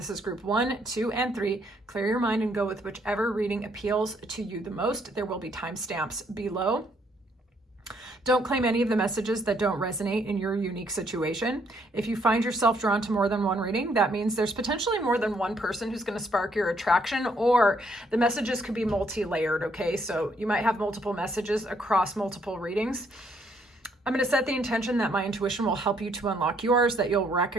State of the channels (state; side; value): normal; both; correlation 0.69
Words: is group 1, 2, and 3. Clear your mind and go with whichever reading appeals to you the most. There will be timestamps below. Don't claim any of the messages that don't resonate in your unique situation. If you find yourself drawn to more than one reading, that means there's potentially more than one person who's going to spark your attraction, or the messages could be multi-layered, okay? So you might have multiple messages across multiple readings. I'm going to set the intention that my intuition will help you to unlock yours, that you'll